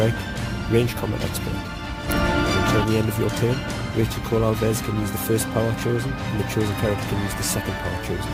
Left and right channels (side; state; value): both; identical; correlation 1.00